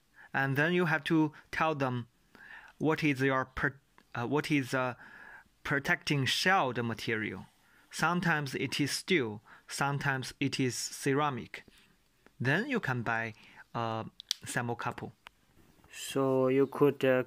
and then you have to tell them what is your protecting shell material. sometimes it is steel, sometimes it is ceramic. Then you can buy a thermocouple. So you could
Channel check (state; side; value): identical; both; correlation 1.00